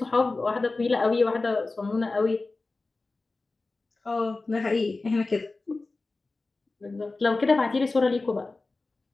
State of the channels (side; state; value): right; quieter; 3.5 dB